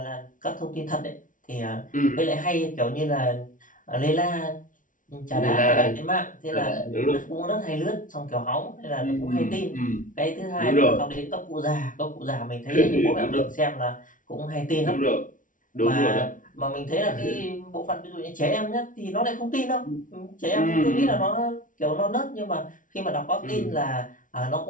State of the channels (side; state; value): right; late; 0.38 ms